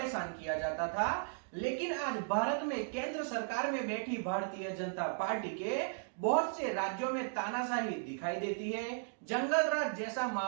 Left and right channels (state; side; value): silent; left; digital silence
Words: किया जाता था। लेकिन आज भारत में केंद्र सरकार में बैठी भारतीय जनता पार्टी के बहुत से राज्यों में तानाशाही दिखाई देती है। जंगल राज जैसा